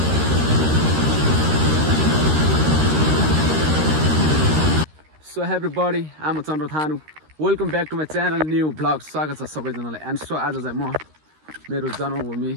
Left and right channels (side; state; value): left; late; 13 ms